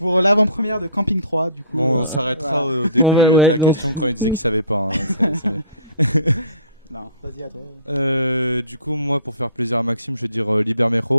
l'avant-première de Camping 3, du coup. Bon, on s'arrêtera au début On va- de ouais, la donc- question quand il disait qu'il savait pas. hein. Non, vas-y à toi. Du coup, moi, pour faire plaisir à Maxime, je vais dire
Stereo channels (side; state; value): both; inverted; correlation -0.50